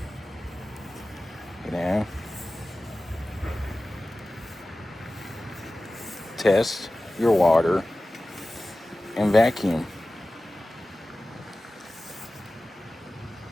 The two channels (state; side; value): normal; both; correlation 0.96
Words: You know, test your water and vacuum.